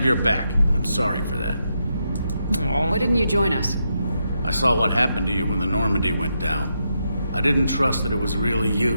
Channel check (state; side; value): inverted; both; correlation -0.83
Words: your back, and I'm sorry for that. Aww. Why didn't you join us? I saw what happened to you when the Normandy went down. I didn't trust that it was really